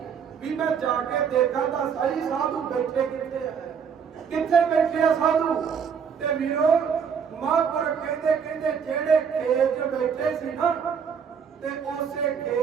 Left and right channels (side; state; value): left; quieter; 6.9 dB